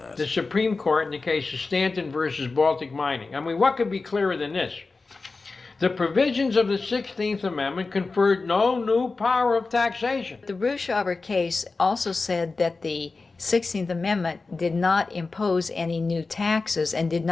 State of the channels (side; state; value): right; quieter; 3.9 dB